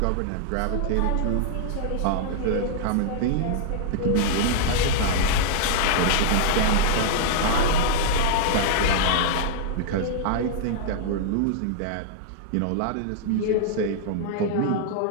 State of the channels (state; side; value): different; both; correlation -0.01